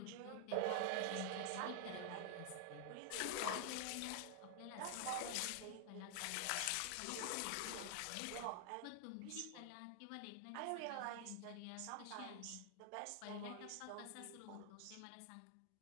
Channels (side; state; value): both; different; correlation 0.00